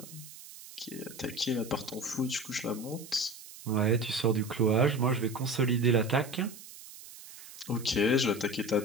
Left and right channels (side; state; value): right; noise; hiss, 16 dB below the sound